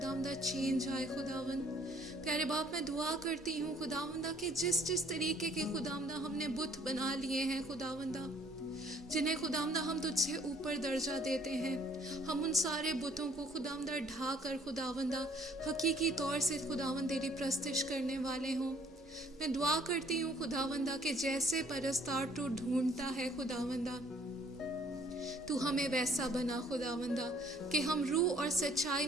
चेंज आए। खुदावंद प्यारे बाप, मैं दुआ करती हूँ खुदावंदा कि जिस जिस तरीके के खुदावंदा हमने बुत बना लिए हैं खुदावंदा, जिन्हें खुदावंदा हम तुझसे ऊपर दर्जा देते हैं, हम उन सारे बुतों को खुदावंदा ढा कर खुदावंदा हकीकी तौर से खुदावंद तेरी प्रस्तिश करने वाले हों। मैं दुआ करती हूँ खुदावंदा कि जैसे परस्तार तू ढूंढता है खुदावंदा, तू हमें वैसा बना खुदावंदा कि हम रूह और सच्चाई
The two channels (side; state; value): both; normal; correlation 0.60